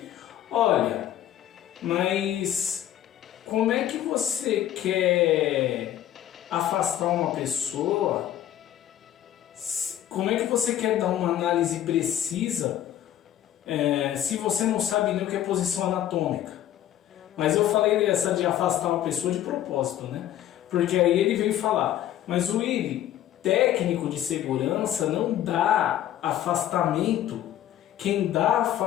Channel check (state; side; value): quieter; right; 11.9 dB